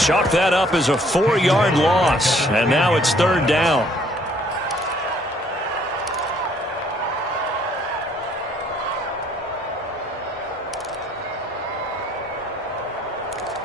that up as a 4-yard loss. And now it's 3rd down.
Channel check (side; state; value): both; normal; correlation 0.62